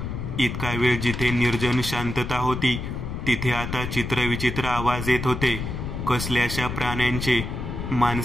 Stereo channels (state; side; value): noise; left; rumble, 5 dB below the sound